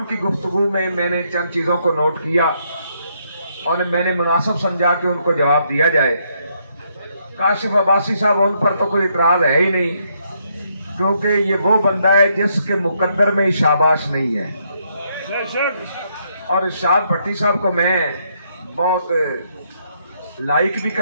کی گفتگو میں نے چند چیزوں کو نوٹ کیا اور میں نے مناسب سمجھا کہ ان کو جواب دیا جائے۔ کاشف عباسی صاحب، ان پر تو کوئی اعتراض ہے ہی نہیں، کیونکہ یہ وہ بندہ ہے جس کے مقدر میں شاباش نہیں ہے۔ اور ارشاد بھٹی صاحب کو میں بہت لائک بھی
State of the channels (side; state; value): both; inverted; correlation -0.74